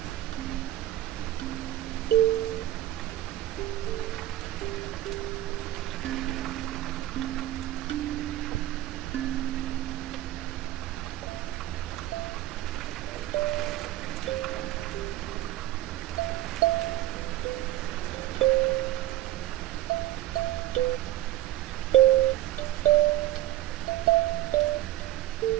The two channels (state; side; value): quieter; left; 15.1 dB